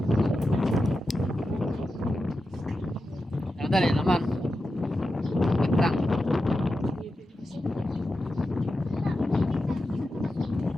Ano dali naman? Itang.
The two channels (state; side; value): normal; both; correlation 0.90